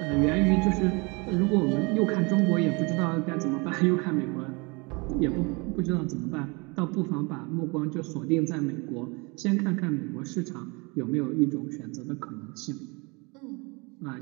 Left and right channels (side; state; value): left; quieter; 28.8 dB